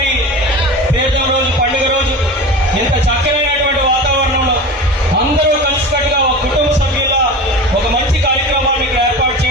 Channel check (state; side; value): normal; both; correlation 0.31